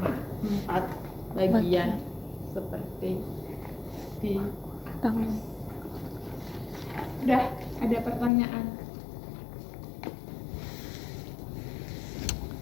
4 bagian seperti di atas. Udah ada pertanyaan?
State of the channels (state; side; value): drops out; right; at 8.3 s